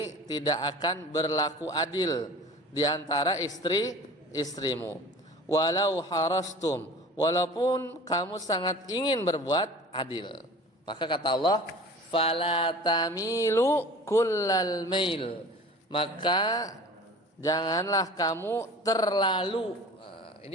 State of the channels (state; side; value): normal; both; correlation 0.41